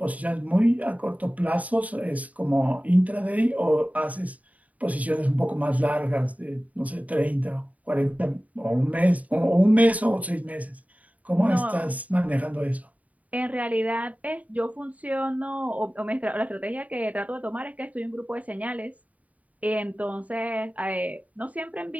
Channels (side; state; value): left; late; 0.071 ms